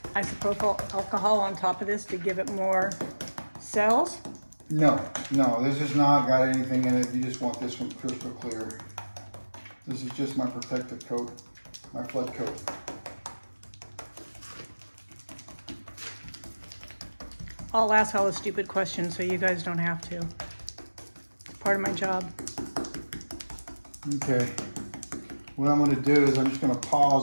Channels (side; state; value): both; inverted; correlation -1.00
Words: isopropyl alcohol on top of this to give it more cells? No, this has not got anything in it. You just want this one crystal clear. This is just my protective coat, my flood coat. I'll ask all the stupid questions so you guys don't have to. It's part of my job. Okay. What I'm going to do is I'm just going to